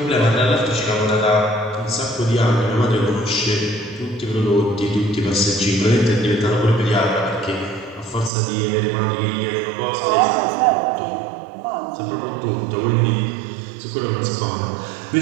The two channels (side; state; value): left; drops out; at 8.3 s